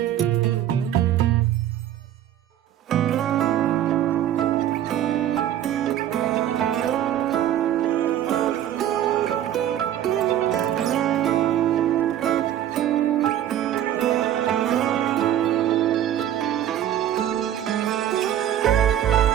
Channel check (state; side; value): quieter; left; 11.3 dB